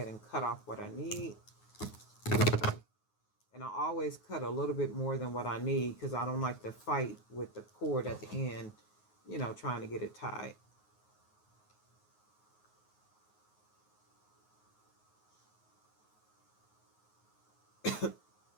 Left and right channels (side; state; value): right; late; 9.4 ms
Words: and cut off what I need. And I always cut a little bit more than what I need because I don't like to fight with the cord at the end, you know, trying to get it tied.